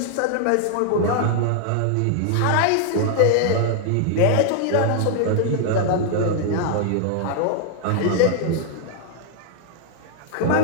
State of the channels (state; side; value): different; both; correlation 0.00